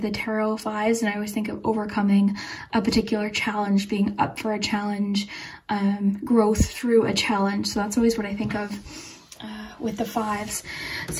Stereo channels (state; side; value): identical; both; correlation 1.00